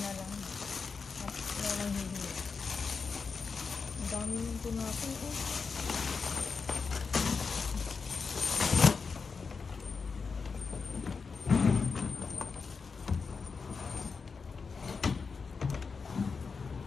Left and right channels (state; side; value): quieter; right; 5.0 dB